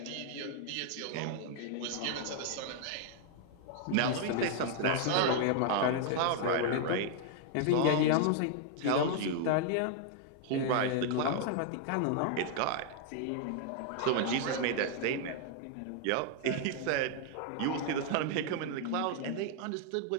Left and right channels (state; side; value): different; both; correlation 0.00